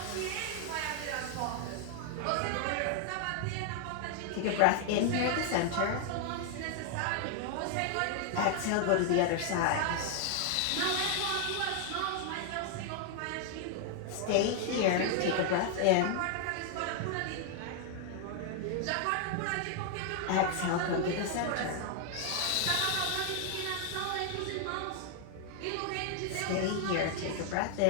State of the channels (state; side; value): different; both; correlation 0.00